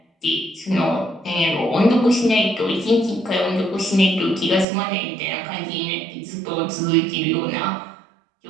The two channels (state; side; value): drops out; left; at 4.7 s